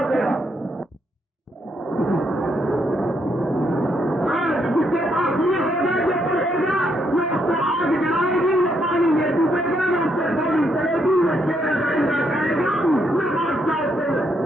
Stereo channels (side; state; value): both; normal; correlation 0.76